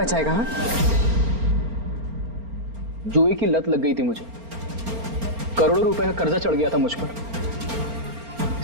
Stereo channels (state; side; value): late; left; 4.4 ms